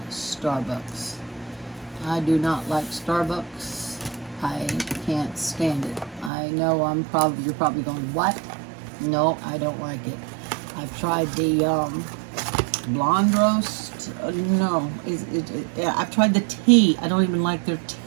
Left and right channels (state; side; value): drops out; left; at 6.3 s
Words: Starbucks. I do not like Starbucks. I can't stand it. I know you're probably going, what? No, I don't like it. I've tried the blonde roast. No, I've tried the tea. I don't even like their